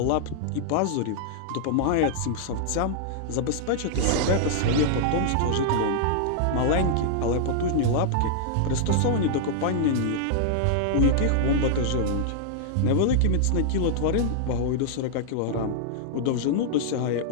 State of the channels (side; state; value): both; different; correlation -0.01